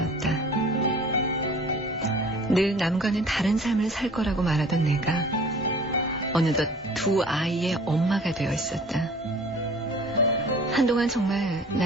늘 남과는 다른 삶을 살 거라고 말하던 내가 어느덧 두 아이의 엄마가 되어 있었다. 한동안 정말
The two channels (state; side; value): normal; both; correlation 0.47